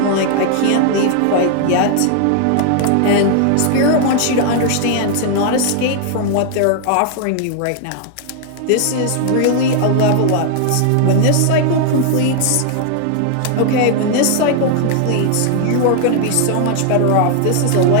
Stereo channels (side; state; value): both; different; correlation 0.00